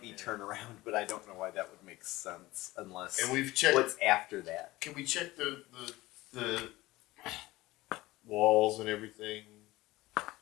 be turnaround, but I don't know why that would make sense unless. And we've checked. What's after that? Can we check the walls and everything?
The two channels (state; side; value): quieter; right; 18.8 dB